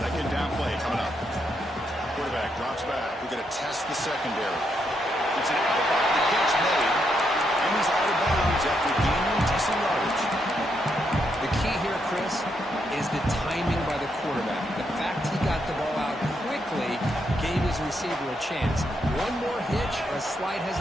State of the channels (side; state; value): both; normal; correlation 0.79